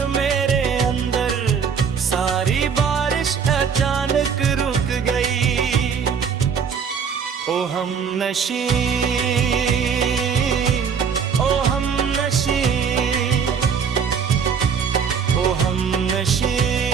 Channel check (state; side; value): quieter; left; 6.6 dB